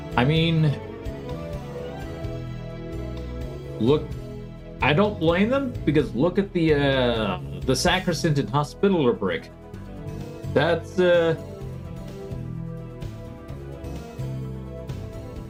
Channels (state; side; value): identical; both; correlation 1.00